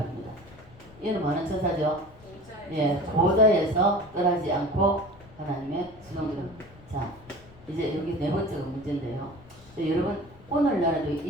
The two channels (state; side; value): noise; left; rumble, 23 dB below the sound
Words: 얘는 뭐하는 천사죠? 예, 보좌에서 떠나지 않고 하나님의 수동으로. 자, 이제 여기 네 번째가 문제인데요. 여러분, 오늘날에도